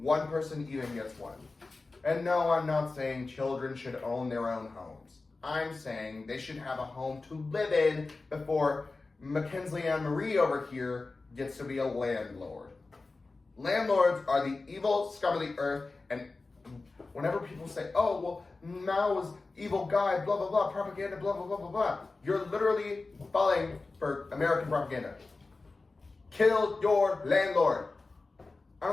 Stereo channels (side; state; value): right; quieter; 3.6 dB